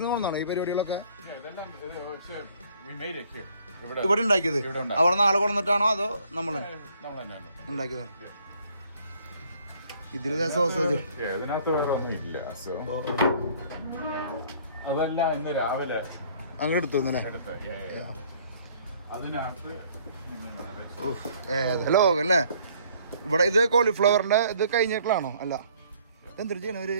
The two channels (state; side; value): inverted; both; correlation -0.60